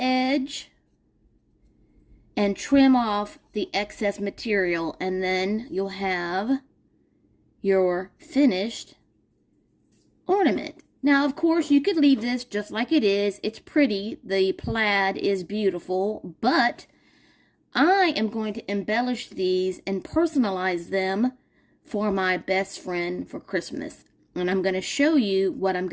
and trim off the excess material, and then you'll have your finished ornament. Now, of course, you could leave this just like it is. It's pretty. The plaid is beautiful, but I am going to embellish these and personalize them for my best friend for Christmas. And I'm going to show you what I'm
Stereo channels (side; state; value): both; identical; correlation 1.00